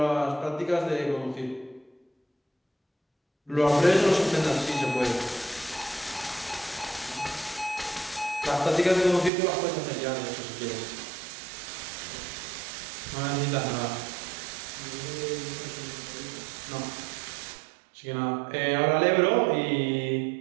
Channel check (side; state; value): left; drops out; at 9.3 s